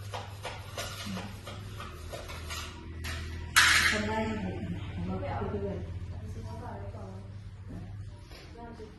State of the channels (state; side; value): identical; both; correlation 1.00